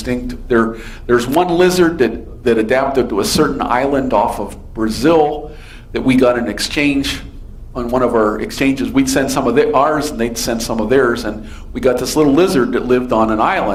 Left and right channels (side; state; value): both; identical; correlation 1.00